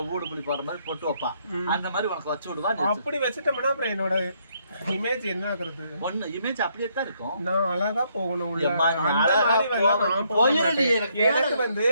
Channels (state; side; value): inverted; both; correlation -0.72